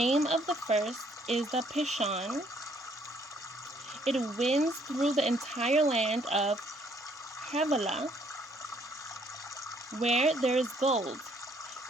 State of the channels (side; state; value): both; normal; correlation 0.65